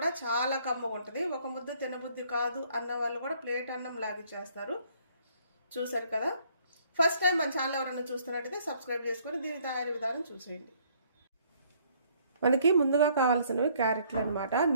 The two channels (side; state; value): both; inverted; correlation -0.63